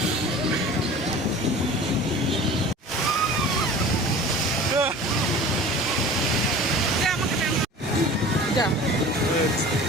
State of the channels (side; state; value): both; normal; correlation 0.40